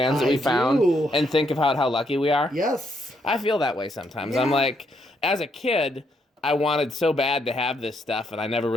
that we found and think of how lucky we are? Yes. I feel that way sometimes. Yeah. I'm like, as a kid, I wanted so bad to have this stuff, and I never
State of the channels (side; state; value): both; normal; correlation 0.75